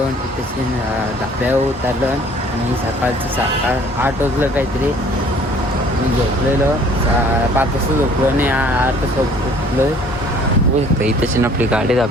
तिथे धाब्यावर उतरलो. आणि सकाळचं 8 वाजलं काहीतरी. मी झोपलेलो 5 वाजता झोपलो आणि 8 वाजता उठलो. बघू शकता इथेच आपली गाडी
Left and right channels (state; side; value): normal; both; correlation 0.55